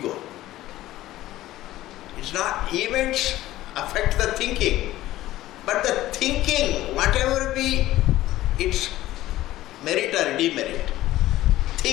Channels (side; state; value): right; quieter; 15.3 dB